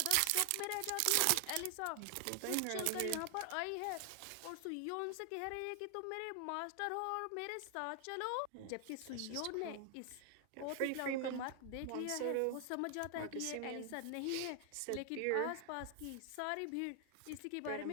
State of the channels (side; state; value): both; different; correlation 0.00